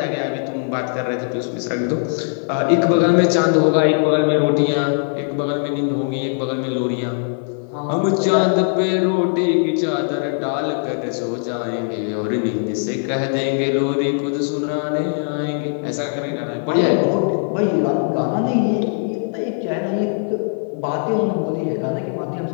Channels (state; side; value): silent; right; 57 dB below the other